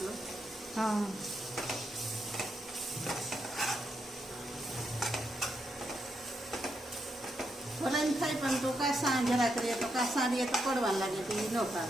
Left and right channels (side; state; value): both; normal; correlation 0.81